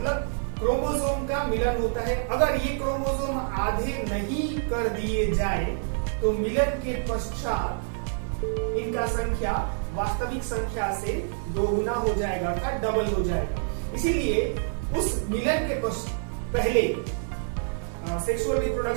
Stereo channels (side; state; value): left; silent; digital silence